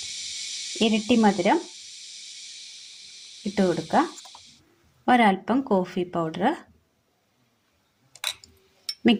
ഇരട്ടി മധുരം ഇട്ട് കൊടുക്കുക. ഒരൽപ്പം കോഫി പൗഡർ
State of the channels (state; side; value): identical; both; correlation 1.00